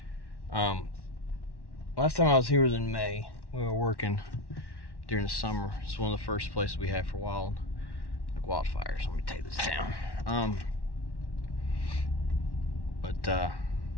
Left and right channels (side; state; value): right; late; 1.1 ms